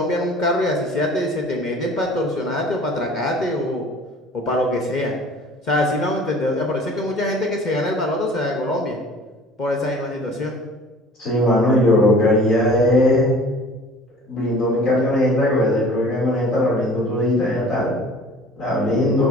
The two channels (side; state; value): both; normal; correlation 0.47